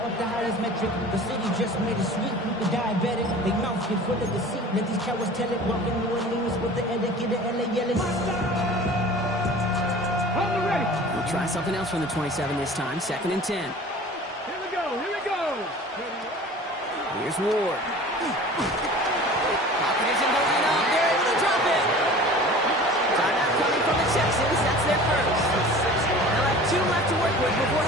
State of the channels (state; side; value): normal; both; correlation 0.42